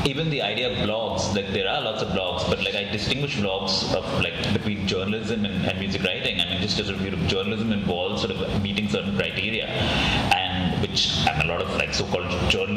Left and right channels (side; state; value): both; identical; correlation 1.00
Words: even the idea of blogs, like there are lots of blogs, but like I distinguish blogs of like between journalism and music writing. I mean, just as journalism involves sort of meeting certain criteria, and which a lot of like so-called